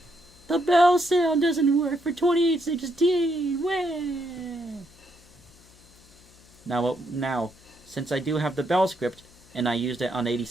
The bell sound doesn't work for 2816. Wah! Now, since I do have the bell script, and I used it on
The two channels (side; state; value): left; noise; hum, 26 dB below the sound